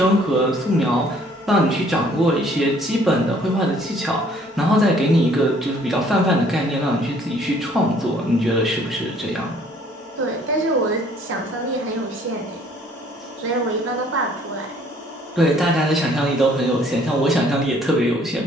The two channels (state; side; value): normal; both; correlation 0.59